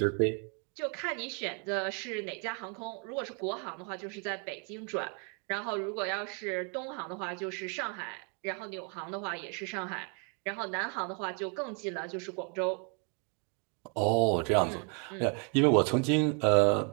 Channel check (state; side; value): quieter; left; 38.3 dB